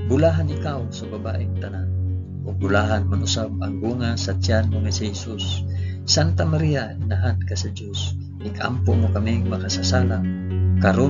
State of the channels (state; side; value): identical; both; correlation 1.00